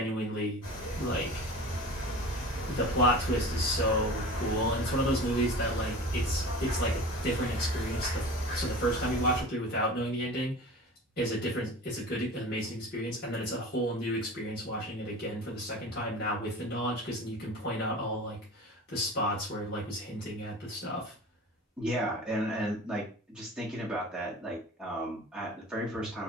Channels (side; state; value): both; normal; correlation 0.37